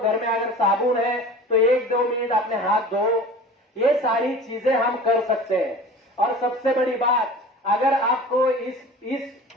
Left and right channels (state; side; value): normal; both; correlation 0.39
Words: में अगर साबुन है तो 1-2 मिनट अपने हाथ धो। ये सारी चीजें हम कर सकते हैं। और सबसे बड़ी बात, अगर आपको इस